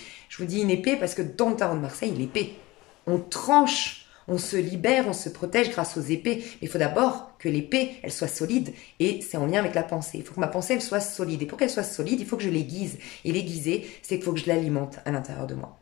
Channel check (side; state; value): right; quieter; 20.4 dB